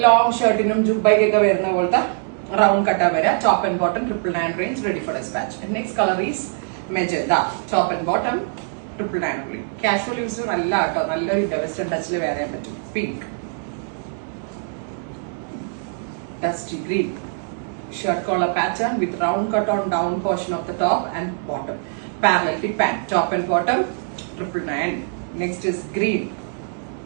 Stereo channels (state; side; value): silent; left; 64 dB below the other